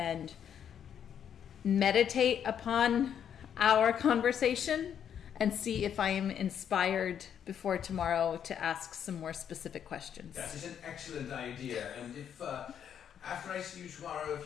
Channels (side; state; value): right; quieter; 8.8 dB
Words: meditate upon our conversation and see if I am inspired before tomorrow to ask some more specific questions. That is an excellent idea, and if after I see you tomorrow,